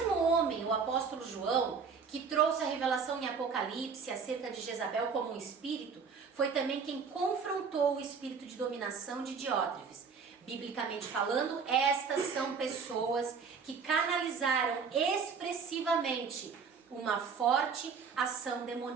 homem, o apóstolo João, que trouxe a revelação em Apocalipse acerca de Jezabel como um espírito, foi também quem confrontou o espírito de dominação de Diótrefes. Biblicamente falando, estas são pessoas que canalizaram expressivamente uma forte ação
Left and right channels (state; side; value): quieter; left; 5.7 dB